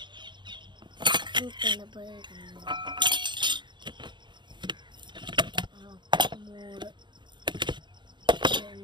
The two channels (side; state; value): left; late; 0.22 ms